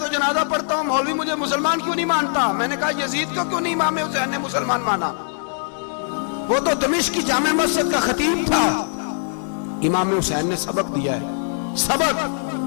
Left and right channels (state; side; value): silent; right; digital silence